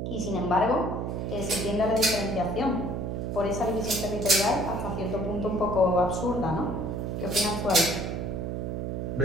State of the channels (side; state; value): right; noise; hum, 3 dB below the sound